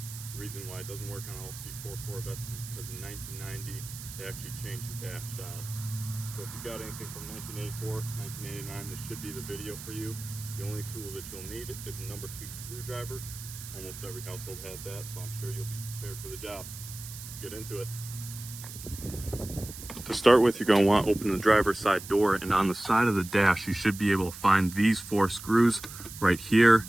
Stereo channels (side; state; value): right; noise; hiss, 12 dB below the sound